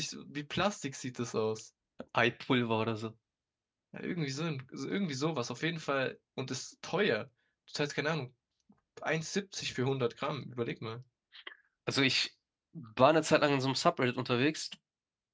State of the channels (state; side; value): identical; both; correlation 1.00